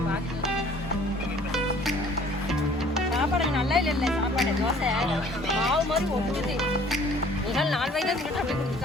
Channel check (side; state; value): both; normal; correlation 0.54